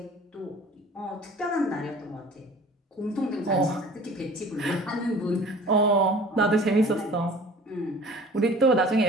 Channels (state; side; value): normal; both; correlation 0.45